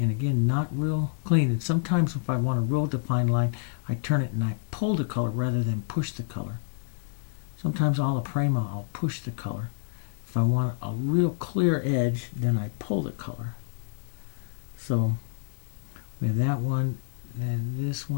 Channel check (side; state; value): right; silent; digital silence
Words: again, not real clean. And sometimes if I want a real defined line, I turn it and I pull the color rather than push the color. Sometimes alla prima, I'll push the color. If I want a real clear edge, then I pull the color. So with that one, then this